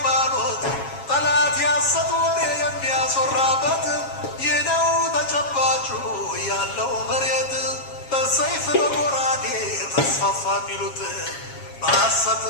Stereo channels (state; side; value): late; right; 7.3 ms